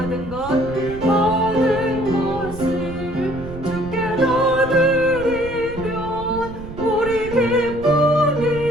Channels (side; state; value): right; noise; rumble, 12 dB below the sound